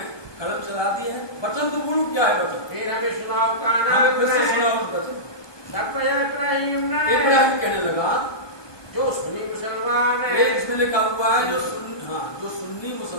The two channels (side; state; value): right; late; 1.2 ms